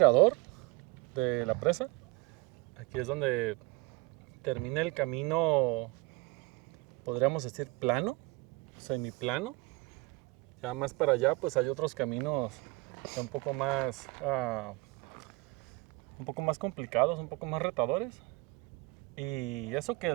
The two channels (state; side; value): quieter; left; 24.2 dB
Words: de la presa. Aquí es donde termina el camino, podríamos decir plano, semiplano. Ya más para allá pues hay otros caminos ya un poco más complicados, un poco más retadores. Y eso